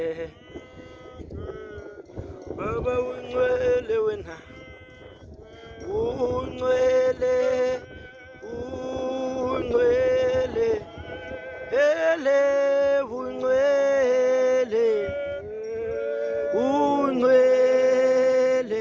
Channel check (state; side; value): identical; both; correlation 1.00